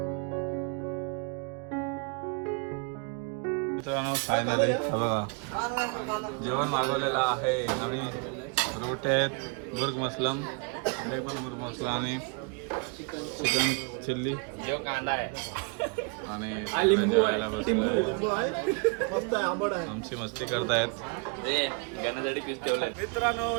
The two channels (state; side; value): quieter; left; 35.2 dB